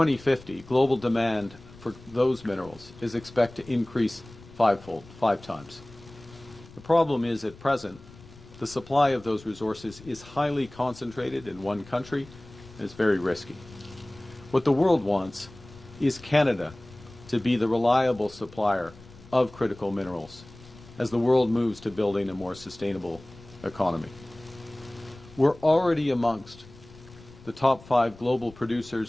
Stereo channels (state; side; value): noise; left; rumble, 21 dB below the sound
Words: global demand for those minerals is expected to increase fivefold, 5 times. The problem is, at present, the supply of those resources is highly concentrated in one country, and it's very risky. What the world wants is Canada to be the reliable supplier of critical minerals as the world moves to building a more sustainable economy. We're already amongst the top 5 global producers